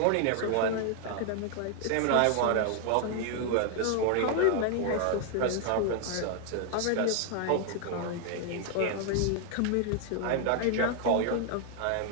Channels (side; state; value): both; different; correlation 0.00